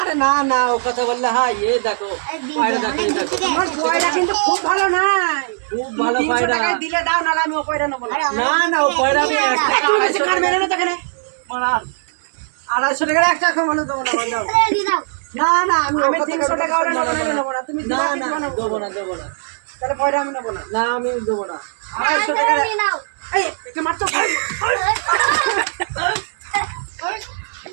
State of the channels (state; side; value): silent; left; 66 dB below the other